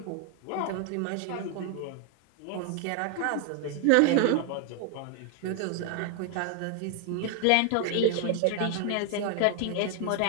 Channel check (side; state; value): both; different; correlation 0.00